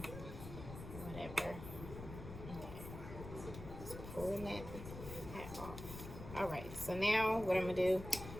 whatever. Okay. Just pulling that fat off. Alright, so now what I'm going to do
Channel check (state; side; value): noise; left; rumble, 10 dB below the sound